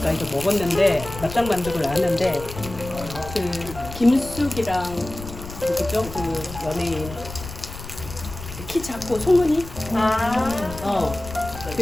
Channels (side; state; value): left; noise; rumble, 12 dB below the sound